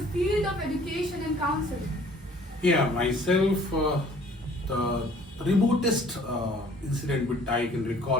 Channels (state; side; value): normal; both; correlation 0.55